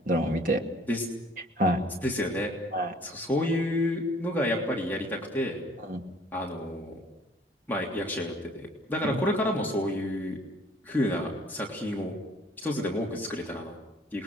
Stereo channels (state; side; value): normal; both; correlation 0.55